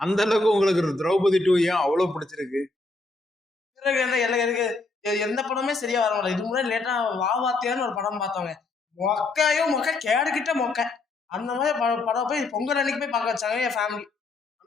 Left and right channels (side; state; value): right; quieter; 3.3 dB